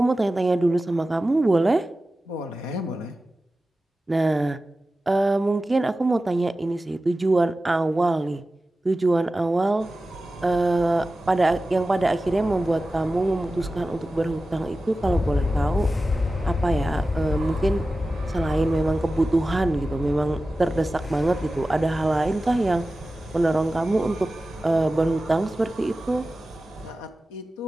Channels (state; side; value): normal; both; correlation 0.95